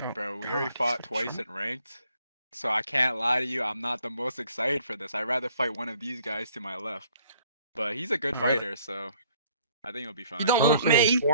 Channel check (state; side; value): inverted; both; correlation -0.61